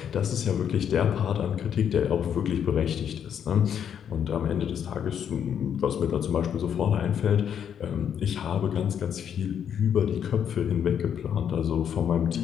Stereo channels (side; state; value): right; quieter; 8.5 dB